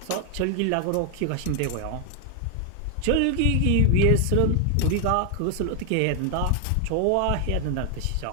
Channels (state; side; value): different; both; correlation 0.00